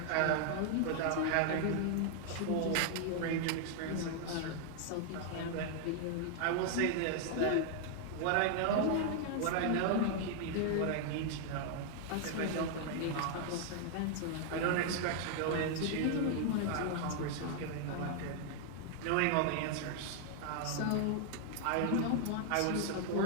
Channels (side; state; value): both; different; correlation 0.00